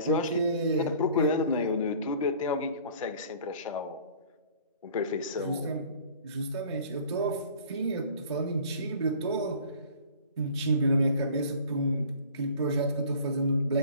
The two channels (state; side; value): inverted; both; correlation -0.49